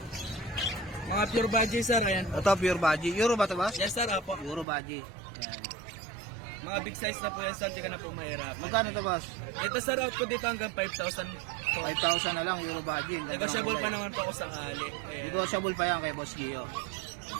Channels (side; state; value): left; drops out; at 4.7 s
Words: Mga pure budget sir, ayan. Ito pure baji. Euro ba to boss? Yes sir, apo. Euro baji. Yan. Mga big size na po yan sir, di ka na po mahirap. Magkano to boss? Ito sir, out ko dito hanggang 5,000. 5,000 na lang Euro baji. Negotiable pa naman po ako sakali. Ayan. Negotiable pa yan kay Boss Gio.